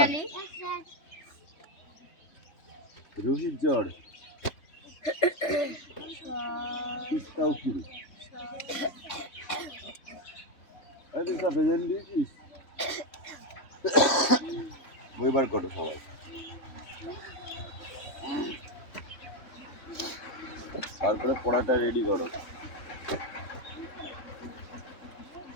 রোহিত জড়, তিস্তা উকিল। দিয়েছিস? বই বার করো সবাই। তারপরে পড়াটা রেডি করো।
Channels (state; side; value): late; right; 3.5 ms